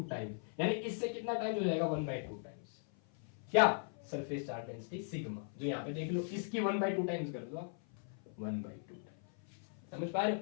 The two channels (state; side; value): silent; right; 52 dB below the other